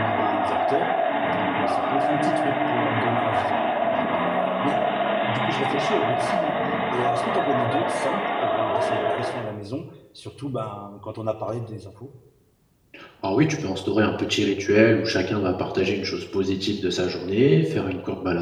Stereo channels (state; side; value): identical; both; correlation 1.00